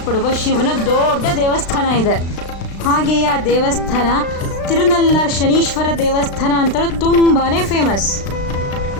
ಶಿವನ ದೊಡ್ಡ ದೇವಸ್ಥಾನ ಇದೆ. ಹಾಗೆಯೇ ಆ ದೇವಸ್ಥಾನ ತಿರುನಲ್ಲಾರ್ ಶನೀಶ್ವರ ದೇವಸ್ಥಾನ ಅಂತಲೂ ತುಂಬಾ ಫೇಮಸ್.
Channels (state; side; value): late; right; 36 ms